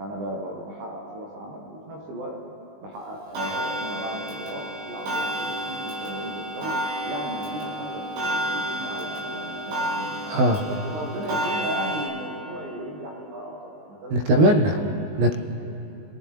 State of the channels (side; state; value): left; late; 20 ms